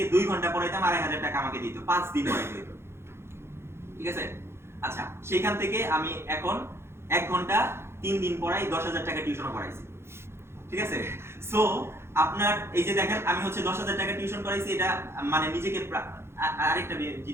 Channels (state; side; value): late; left; 0.12 ms